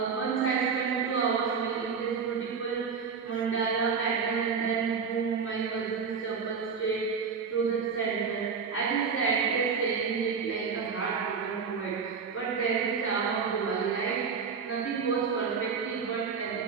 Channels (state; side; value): quieter; left; 5.8 dB